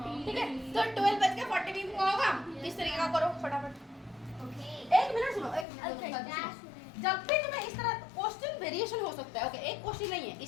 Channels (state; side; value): drops out; right; at 5.7 s